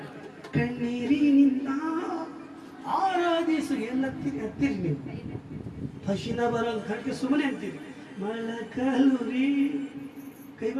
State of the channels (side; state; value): both; identical; correlation 1.00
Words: ಕಣ್ಣೀರಿನಿಂದ ಆರಾಧಿಸು ಎಲ್ಲತ್ತೀರಿ ಹತ್ತಿರಿ ನೀವು. ಹಸಿನ ಬರಲ್ಲ ಕಣ್ಗೆ ಸುಮ್ಮನೆ ಅಂತೀರಿ. ಮಳಕಲುರಿ